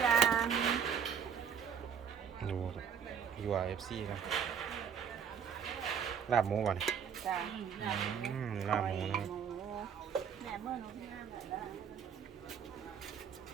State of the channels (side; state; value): left; quieter; 7.6 dB